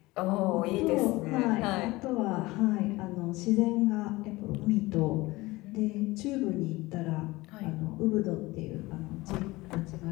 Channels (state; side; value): quieter; right; 20.6 dB